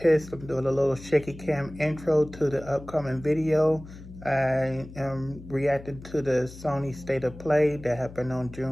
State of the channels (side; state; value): left; noise; hum, 16 dB below the sound